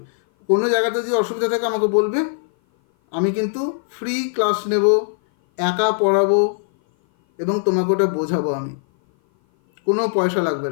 কোনো জায়গাতে যদি অসুবিধা থাকে আমাকে বলবে, আমি কিন্তু ফ্রি ক্লাস নেব, একা পড়াবো এবং তোমাকে ওটা বোঝাবো। আমি কোনো পয়সা লাগবে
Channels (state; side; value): silent; right; 57 dB below the other